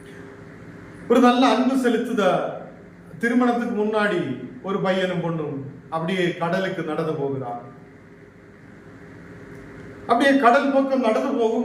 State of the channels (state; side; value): identical; both; correlation 1.00